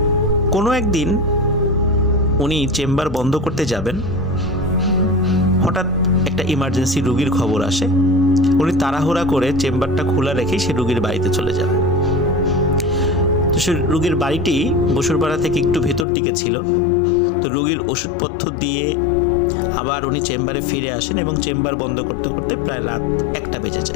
কোনো একদিন উনি চেম্বার বন্ধ করতে যাবেন, হঠাৎ একটা ইমার্জেন্সি রুগীর খবর আসে। উনি তাড়াহুড়া করে চেম্বারটা খোলা রেখে সে রুগীর বাড়িতে চলে যান। তো সে রুগীর বাড়িটি বসুরপাড়া থেকে একটু ভেতর দিকে ছিল। তো রুগীর ওষুধপত্র দিয়ে আবার উনি চেম্বারে ফিরে আসেন এবং চেম্বার বন্ধ করতে করতে প্রায় রাত 1টা বেজে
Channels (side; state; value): right; drops out; at 16.1 s